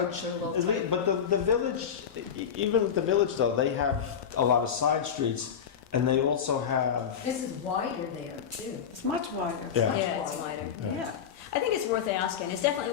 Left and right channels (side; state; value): right; quieter; 7.7 dB